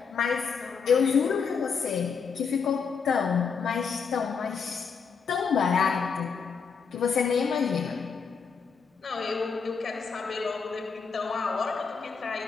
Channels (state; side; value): quieter; right; 5.8 dB